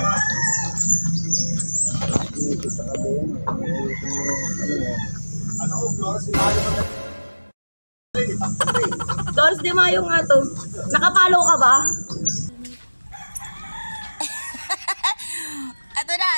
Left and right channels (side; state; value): both; inverted; correlation -1.00